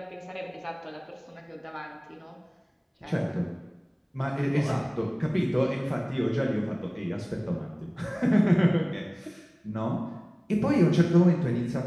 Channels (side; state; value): both; identical; correlation 1.00